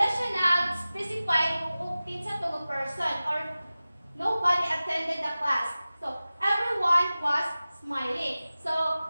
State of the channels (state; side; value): inverted; both; correlation -0.96